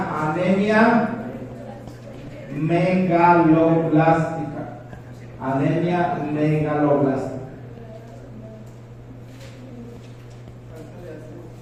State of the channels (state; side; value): identical; both; correlation 1.00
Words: anemia megaloblástica. Anemia megaloblástica.